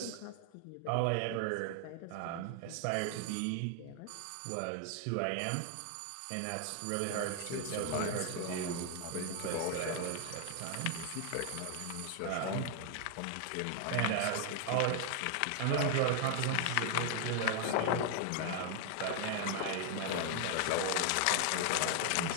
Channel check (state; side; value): different; both; correlation 0.00